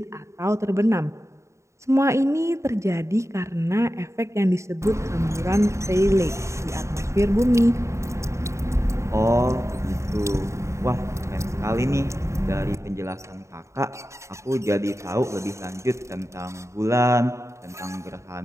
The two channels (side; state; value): left; late; 0.14 ms